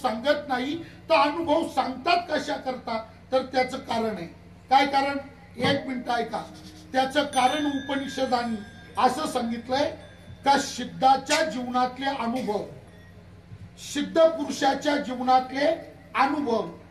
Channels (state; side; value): identical; both; correlation 1.00